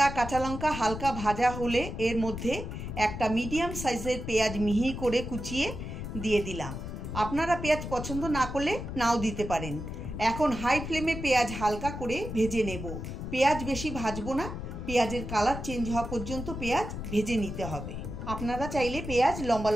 কাঁচা লঙ্কা হালকা ভাজা হলে এর মধ্যে একটা মিডিয়াম সাইজের পেঁয়াজ মিহি করে কুচিয়ে দিয়ে দিলাম। আপনারা পেঁয়াজ পছন্দ না করলে নাও দিতে পারেন। এখন হাই ফ্লেমে পেঁয়াজ হালকা করে ভেজে নেব। পেঁয়াজ বেশি ভাজবো না, পেঁয়াজের কালার চেঞ্জ হওয়া পর্যন্ত পেঁয়াজ ভেজে নিতে হবে। আপনারা চাইলে পেঁয়াজ লম্বা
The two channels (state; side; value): noise; left; rumble, 7 dB below the sound